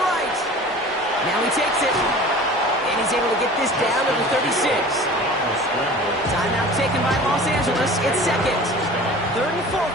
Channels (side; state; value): both; normal; correlation 0.41